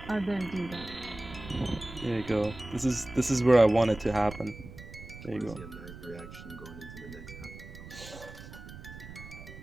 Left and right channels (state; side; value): noise; right; rumble, 14 dB below the sound